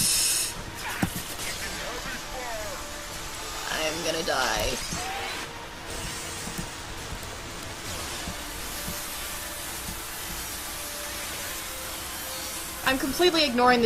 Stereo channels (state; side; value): identical; both; correlation 1.00